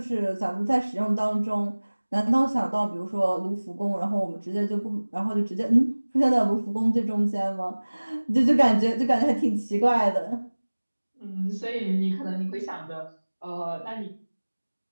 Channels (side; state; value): both; inverted; correlation -1.00